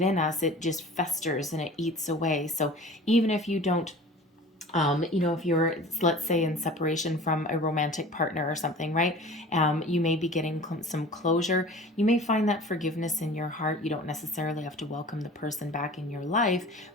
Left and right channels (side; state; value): both; normal; correlation 0.42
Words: us. It just festers and it eats away. So even if you don't if you're, let's say, in separation from a romantic partner or something, right? You may be getting some closure. You may find that forgiveness in your heart. You don't necessarily have to welcome the person back in your life,